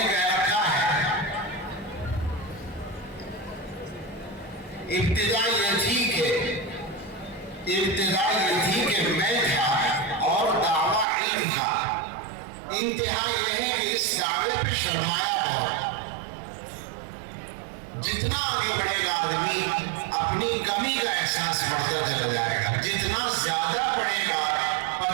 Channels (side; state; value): left; drops out; at 11.1 s